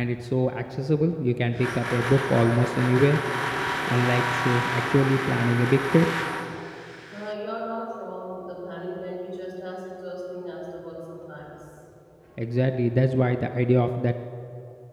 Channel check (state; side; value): identical; both; correlation 1.00